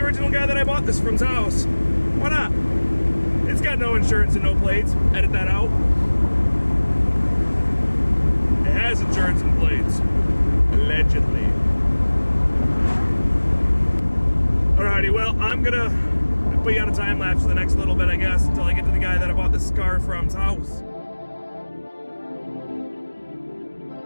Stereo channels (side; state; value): both; inverted; correlation -1.00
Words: Guy that I bought this from's house. Why not? It's got no insurance and no plates. Edit that out. It has insurance and plates. Allegedly. Alrighty, well, I'm gonna put you on a time lapse for the next little bit, I guess, until I get to the guy that I bought this car from's house.